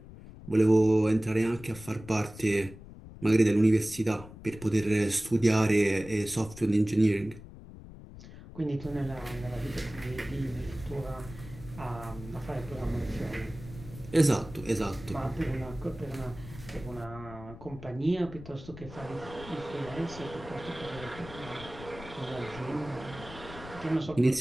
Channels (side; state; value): left; noise; rumble, 15 dB below the sound